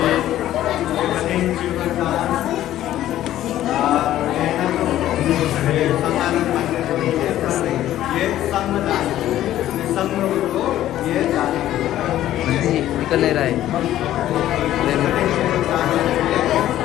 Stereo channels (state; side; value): quieter; right; 13.1 dB